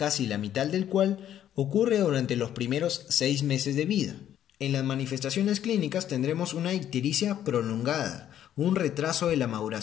la mitad del cual ocurre durante los primeros 6 meses de vida. En las manifestaciones clínicas tendremos una ictericia prolongada, un retraso de la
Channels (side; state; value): right; quieter; 10.9 dB